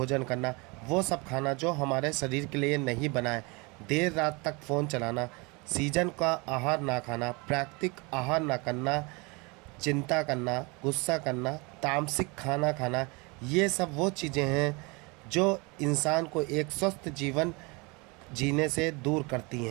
करना, वो सब खाना जो हमारे शरीर के लिए नहीं बना है, देर रात तक फ़ोन चलाना, सीजन का आहार ना खाना, प्राकृतिक आहार ना करना, चिंता करना, गुस्सा करना, तामसिक खाना खाना, ये सब वो चीज़ें हैं जो इंसान को एक स्वस्थ जीवन जीने से दूर करती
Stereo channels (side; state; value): left; quieter; 27.9 dB